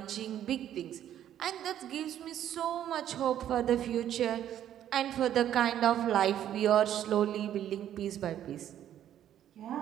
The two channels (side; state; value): left; quieter; 11.0 dB